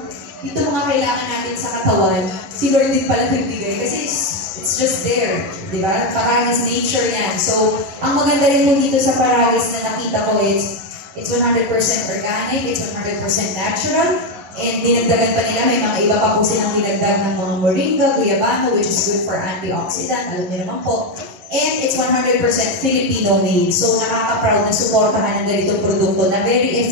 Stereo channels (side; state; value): left; late; 10 ms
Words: ito mga kailangan natin sa katawan, si Lord din pala nagbigay. Kasi it's just there, di ba? Paragis nature yan. So, ang maganda rin po dito sa Paragis na nakita ko is, it's 100% organic, it's 100% natural, and dinagdagan pa nila, may mga iba pa po silang dinagdag ng mga moringa, guyabano, which is good for antioxidant, alam niyo naman po. And it's 100% Filipino made. So nakaka-proud na suportahan ng ganitong produkto na very